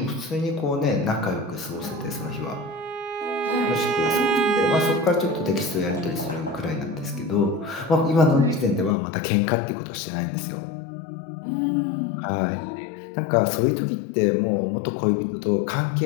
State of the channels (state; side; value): drops out; right; at 9.0 s